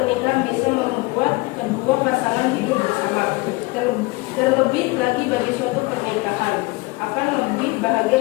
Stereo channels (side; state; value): right; quieter; 23.9 dB